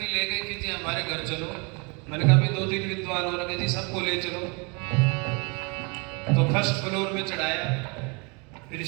ले गए कि जी हमारे घर चलो। मैंने कहा भी 2-3 विद्वान हो रखे जी, सबको ले चलो। तो फर्स्ट फ्लोर में चढ़ाया, फिर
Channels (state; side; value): quieter; left; 31.3 dB